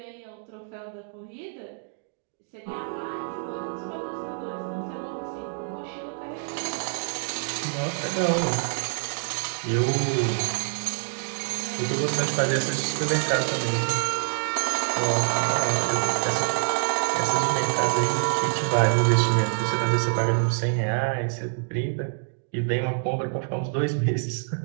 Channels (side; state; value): left; silent; digital silence